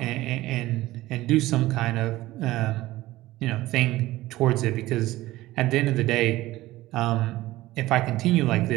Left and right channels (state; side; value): quieter; left; 17.2 dB